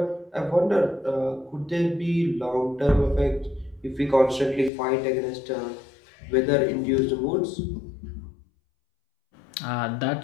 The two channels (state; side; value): drops out; right; at 4.7 s